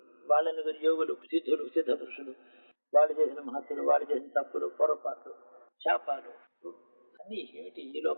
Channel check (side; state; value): both; inverted; correlation -1.00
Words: వాళ్ళని యోగులు, సిద్ధులు, సిద్ధ పురుషులు, వాళ్ళు చేసిన మహత్తులు, వాళ్ళు చేసిన తప్పులు, పొరపాట్లు, శాపాలు అన్నీ ఏమిటి, ఈ